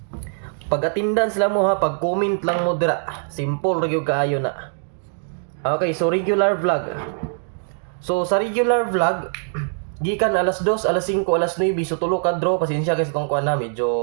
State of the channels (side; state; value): left; silent; 64 dB below the other